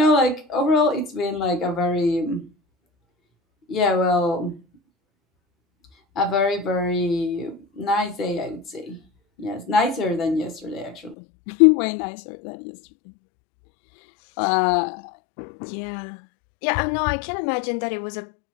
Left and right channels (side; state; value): right; drops out; at 11.2 s